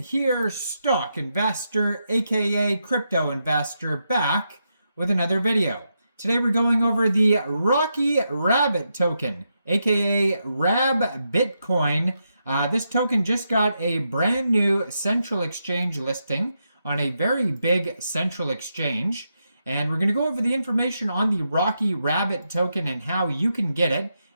stock investor, aka crypto investor, back with another video. Today we're going over the Rocky Rabbit token, aka RabBITCOIN. This token just got a brand new central exchange listing on a very big central exchange. And we're going to go over the information on the Rocky Rabbit token and how you can get it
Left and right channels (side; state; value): both; inverted; correlation -0.84